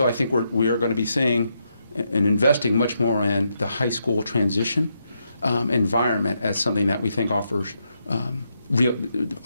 I think we are going to be seeing and investing much more in the high school transition environment as something that we think offers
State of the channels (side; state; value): both; inverted; correlation -0.81